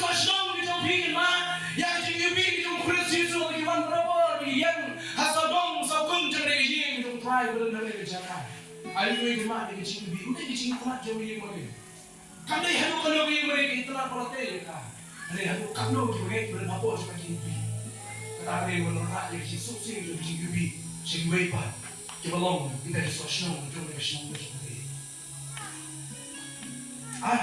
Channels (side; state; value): both; identical; correlation 1.00